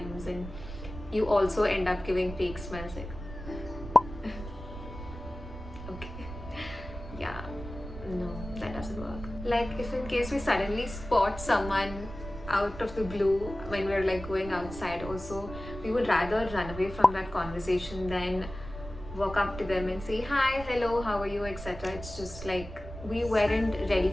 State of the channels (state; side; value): noise; right; rumble, 11 dB below the sound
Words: and you also end up giving fake smiles like yeah, no, that doesn't work. Like if in case we suddenly spot someone out of the blue when we're like going outside also, we would rather run away from that conversation than walk up to them and say hi, hello, how are you, etc. It's just like we weren't ready